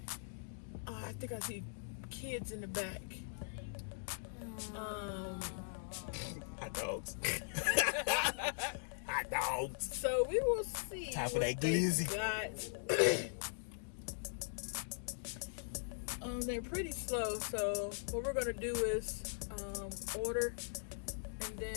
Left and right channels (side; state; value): right; silent; digital silence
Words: I think I see kids in the back. Hot dogs. Hot dogs. So we will see. Time for what that they glizzy. got. They're pretty slow, so what we're gonna do is order, and